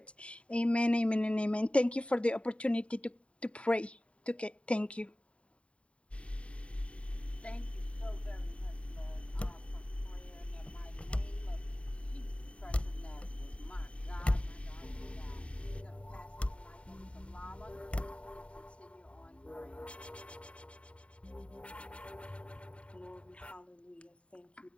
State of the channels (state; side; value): late; right; 0.061 ms